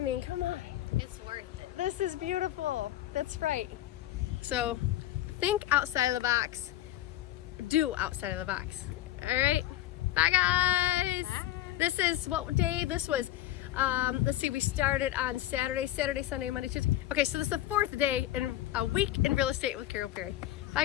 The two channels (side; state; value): right; quieter; 14.1 dB